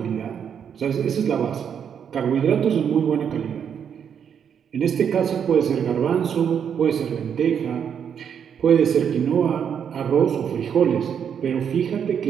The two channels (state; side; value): quieter; left; 7.9 dB